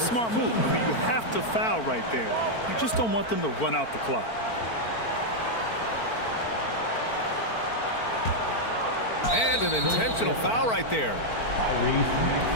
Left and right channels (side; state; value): right; late; 4.4 ms